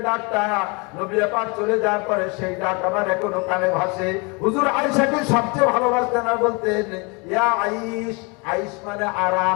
ডাকটা নবী পাক চলে যাওয়ার পরে সেই ডাক আমার এখনো কানে ভাসে। হুজুর আয়েশাকে সবচেয়ে ভালোবাসতেন আর বলতেন ইয়া আইশ। আইশ মানে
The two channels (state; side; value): quieter; right; 30.1 dB